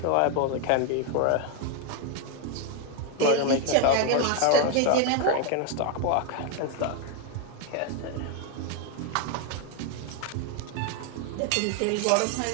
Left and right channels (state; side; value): different; both; correlation 0.01